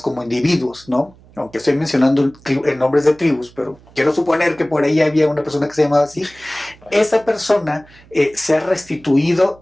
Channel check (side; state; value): right; noise; hum, 26 dB below the sound